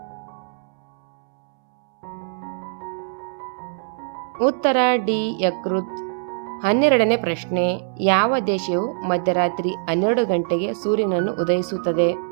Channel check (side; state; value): left; silent; 64 dB below the other